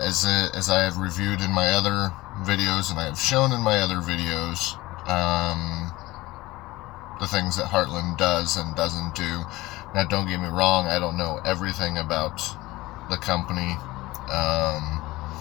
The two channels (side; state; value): right; quieter; 19.2 dB